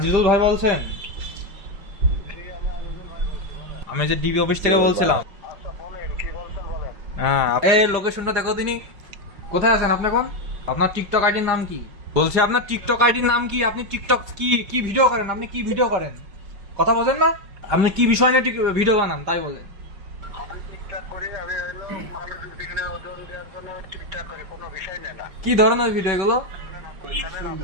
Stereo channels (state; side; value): late; left; 5.5 ms